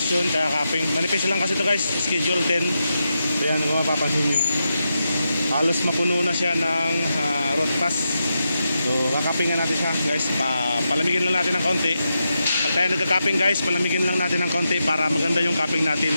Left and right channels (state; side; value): inverted; both; correlation -0.87